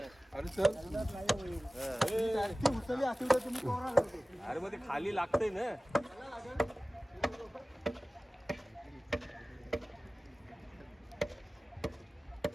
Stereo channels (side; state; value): both; normal; correlation 0.97